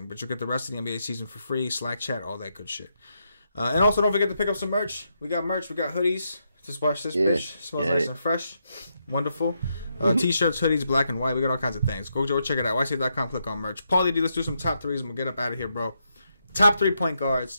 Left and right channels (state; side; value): inverted; both; correlation -0.81